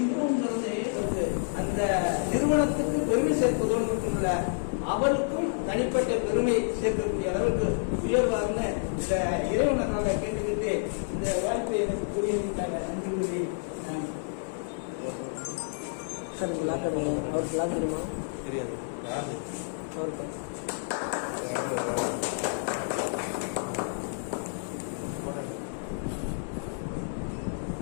அந்த நிறுவனத்துக்கு பெருமை சேர்ப்பதோடு மட்டும் இல்ல, அவருக்கும் தனிப்பட்ட பெருமை சேர்க்கக்கூடிய அளவுக்கு உயர்வார்னு இந்த இறைவனால கேட்டுக்கிட்டு இந்த வாய்ப்பை எனக்கு புரியுதுக்காக நன்றி கூறி சார் லாக் பண்ணுங்க. அவருக்கு லாக் தெரியுமா? தெரியாது. அவருக்கு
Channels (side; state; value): right; silent; 58 dB below the other